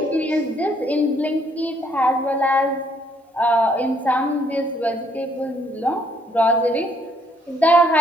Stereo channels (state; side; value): normal; both; correlation 0.67